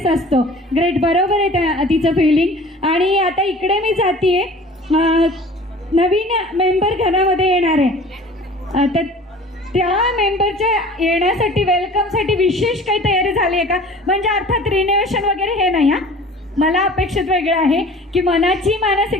असतो. Great, बरोबर आहे तिचं फिलिंग. आणि आता इकडे मी जातीये, नवीन मेंबर घरामध्ये येणार आहे, तर त्या मेंबरच्या येण्यासाठी वेलकमसाठी विशेष काही तयारी झाली आहे का? म्हणजे अर्थात रिनोव्हेशन वगैरे हे नाही हा, मला अपेक्षित वेगळं आहे की मनाची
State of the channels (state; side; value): normal; both; correlation 0.44